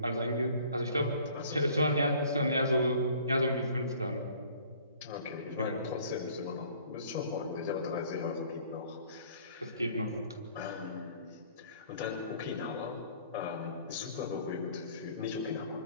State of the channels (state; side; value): inverted; both; correlation -0.53